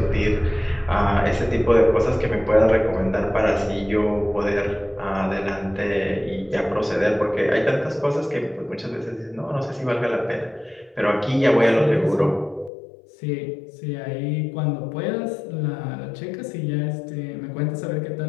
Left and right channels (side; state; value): right; drops out; at 12.7 s